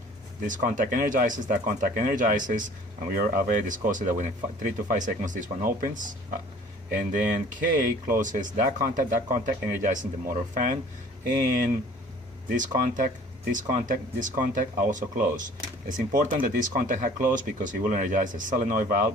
this contact energizes, that contact energizes, and we already discussed that within 3 to 5 seconds this one opens. And then K closes that contact energizing the motor fan, and this contact also close. It's important that this contact had closed because it will energize the solenoid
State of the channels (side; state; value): both; normal; correlation 0.51